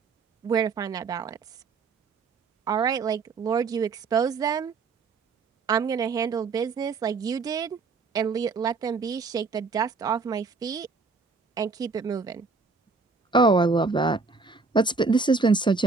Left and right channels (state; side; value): quieter; left; 4.4 dB